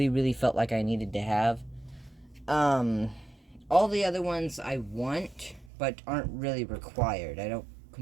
felt like I needed to have. All the other ones I want, but aren't really required. I don't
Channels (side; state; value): left; drops out; at 5.7 s